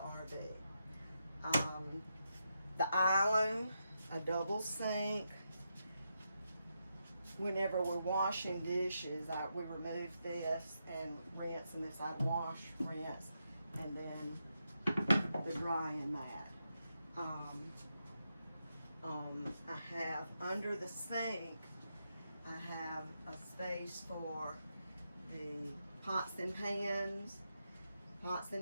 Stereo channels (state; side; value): inverted; both; correlation -0.84